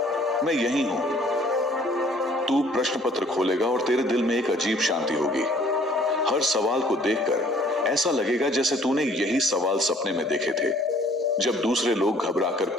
मैं यही हूं। तू प्रश्न पत्र खोलेगा और तेरे दिल में एक अजीब शांति होगी। हर सवाल को देखकर ऐसा लगेगा जैसे तूने यही सवाल सपने में देखे थे। जब दूसरे लोग घबराकर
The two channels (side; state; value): both; normal; correlation 0.57